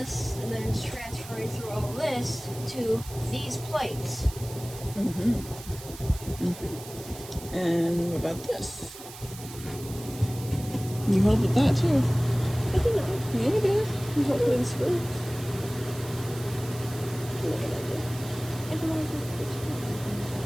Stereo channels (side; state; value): right; noise; hiss, 15 dB below the sound